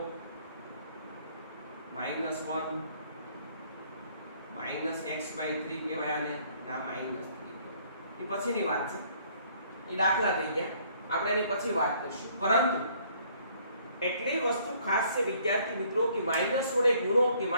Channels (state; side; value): inverted; both; correlation -0.62